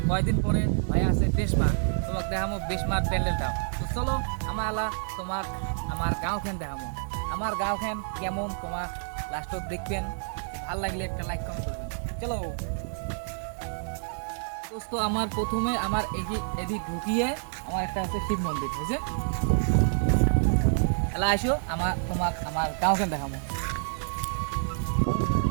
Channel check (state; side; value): silent; left; digital silence